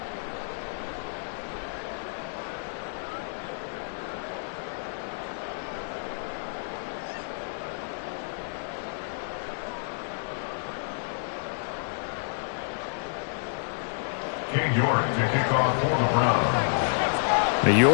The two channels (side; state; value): right; silent; 58 dB below the other